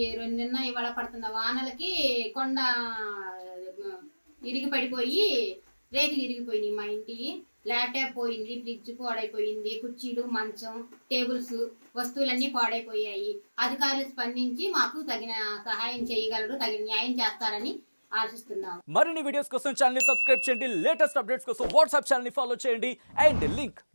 నిన్న ఇవాళ పడుతున్న వానలకి కొండ ఇరిగి పడిపోయి రేకులు ఇరిగిపోయినాయి. మా ఇంటి ల్యాప్టాప్ పోయింది, ఫ్రిడ్జ్ పాడైపోయింది, కుర్చీలు, మంచం, టేబుల్స్, వస్తువులన్నీ పాడైపోయాయి. అధికారులు స్పందించి మాకు తగిన సహాయం చేయగలరు, తగిన న్యాయం చేస్తారని ఆశిస్తున్నాము. మరిన్ని వీడియోస్ కోసం ఛానల్ ని సబ్స్క్రైబ్ చేయండి. లేటెస్ట్ అప్డేట్స్ కోసం వాట్సాప్ ఛానల్ ని ఫాలో చేయండి. అండ్ లింక్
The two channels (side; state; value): both; inverted; correlation -1.00